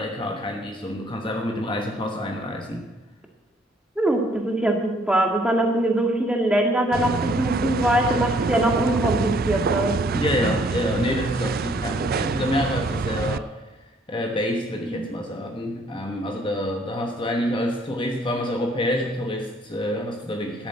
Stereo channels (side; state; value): both; normal; correlation 0.63